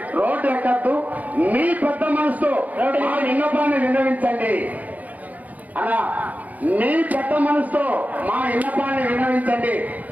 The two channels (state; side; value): late; left; 0.078 ms